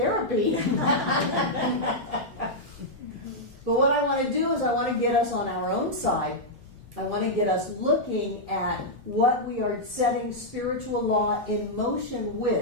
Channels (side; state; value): both; normal; correlation -0.06